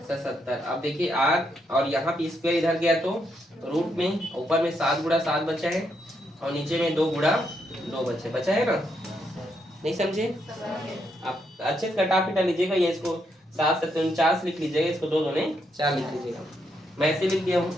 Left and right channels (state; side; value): normal; both; correlation 0.78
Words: 77। अब देखिए आर और यहाँ पे स्क्वायर इधर गया तो रूट में ऊपर में 7 गुणा 7 बचा है और नीचे में 2 गुणा 2 बचा है ना, नहीं समझे आप? अच्छे से कटा पिटा लीजिएगा, ये इसको 7 7 49 लिख लीजिएगा, इसको 2 दूने 4 लिख लीजिएगा। मैं ऐसे लिख दिया हूँ,